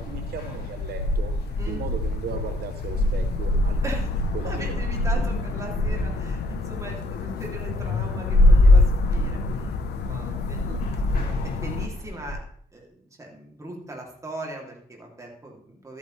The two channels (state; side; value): normal; both; correlation 0.66